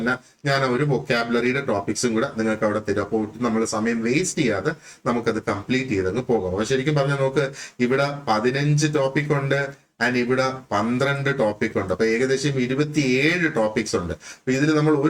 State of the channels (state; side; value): identical; both; correlation 1.00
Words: ഞാൻ ആ ഒരു വൊക്കാബുലറിയുടെ ടോപ്പിക്സും കൂടെ നിങ്ങൾക്ക് അവിടെ തരും. അപ്പോൾ നമ്മൾ സമയം വേസ്റ്റ് ചെയ്യാതെ നമുക്കത് കംപ്ലീറ്റ് ചെയ്തങ്ങ് പോകാം. അപ്പൊ ശരിക്കും പറഞ്ഞാൽ നമുക്ക് ഇവിടെ 15 ടോപ്പിക് ഉണ്ട് ആൻഡ് ഇവിടെ 12 ടോപ്പിക് ഉണ്ട്. അപ്പൊ ഏകദേശം 27 ടോപ്പിക്സ് ഉണ്ട്. അപ്പൊ ഇതിൽ നമ്മൾ